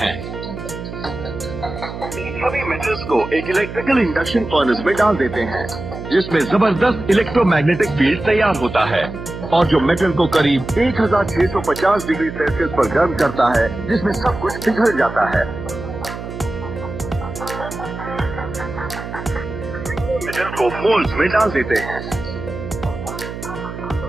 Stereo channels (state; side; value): noise; right; hum, 9 dB below the sound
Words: सभी मेटल्स को एक इलेक्ट्रिकल इंडक्शन फर्नेस में डाल देते हैं, जिसमें जबरदस्त इलेक्ट्रोमैग्नेटिक फील्ड तैयार होता है और जो मेटल को करीब 1650 डिग्री सेल्सियस पर गर्म करता है, जिसमें सब कुछ पिघल जाता है। मेटल को मोल्ड्स में डाल देते हैं।